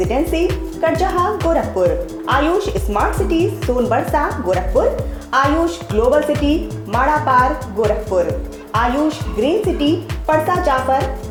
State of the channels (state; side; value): identical; both; correlation 1.00